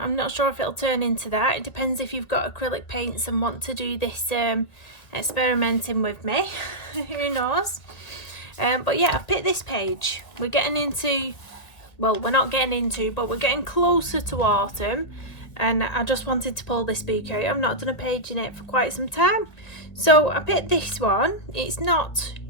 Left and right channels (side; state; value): right; late; 2.0 ms